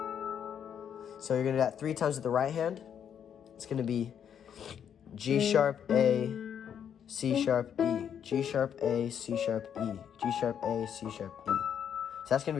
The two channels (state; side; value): quieter; right; 8.5 dB